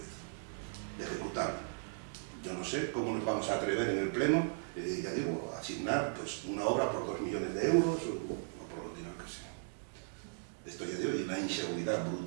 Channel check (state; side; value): silent; left; digital silence